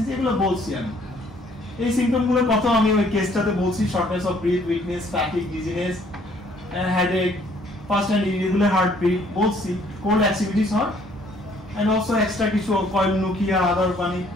এগুলো বলছি আমি। এই সিম্পটমগুলোর কথা আমি ওই কেসটাতে বলছি, shortness of breath, weakness, fatigue, dizziness, headache, fast and irregular heartbeat বলছি, কোল্ড অ্যাক্টিভিটিস হয়, এন্ড অলসো এক্সট্রা কিছু কয়েলোনুকিয়া আদার মানে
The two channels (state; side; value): normal; both; correlation 0.62